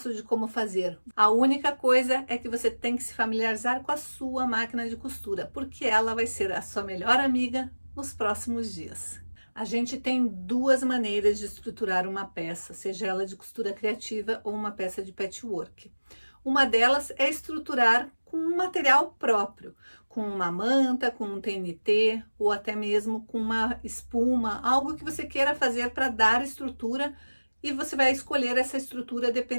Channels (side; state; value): both; inverted; correlation -1.00